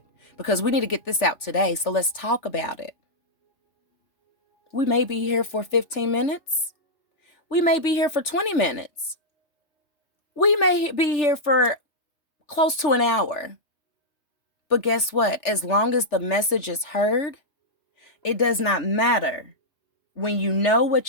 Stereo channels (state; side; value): late; right; 3.4 ms